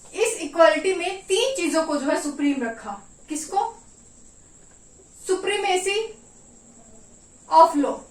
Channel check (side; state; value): both; identical; correlation 1.00